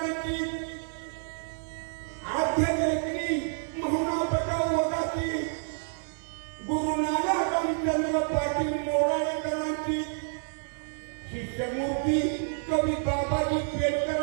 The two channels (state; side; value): silent; left; 59 dB below the other